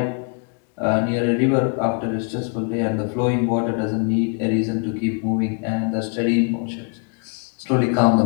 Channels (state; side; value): quieter; right; 38.9 dB